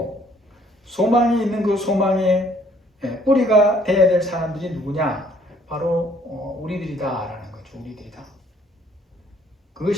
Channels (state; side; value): normal; both; correlation 0.61